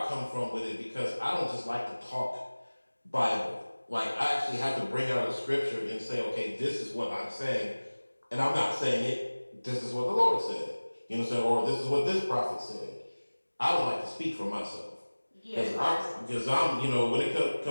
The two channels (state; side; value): inverted; both; correlation -1.00